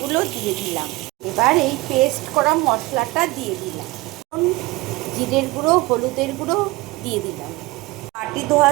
দিয়ে দিলাম। এবার এই পেস্ট করা মশলাটা দিয়ে দিলাম, জিরের গুঁড়ো, হলুদের গুঁড়ো দিয়ে দিলাম, বাটি ধোয়া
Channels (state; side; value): quieter; left; 21.4 dB